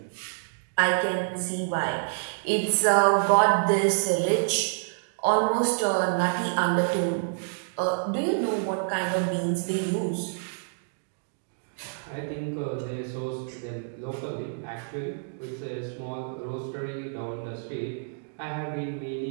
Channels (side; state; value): left; silent; digital silence